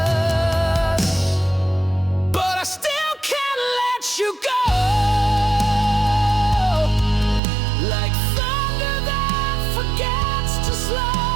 But I still can't let you go, like thunder that forgets to slow.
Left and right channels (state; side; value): drops out; left; at 7.4 s